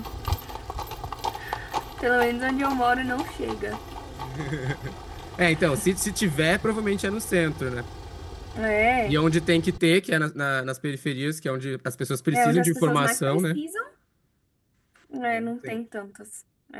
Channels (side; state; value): both; identical; correlation 1.00